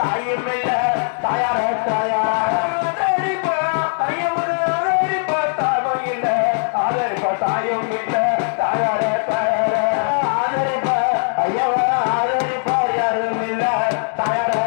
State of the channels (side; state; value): right; silent; digital silence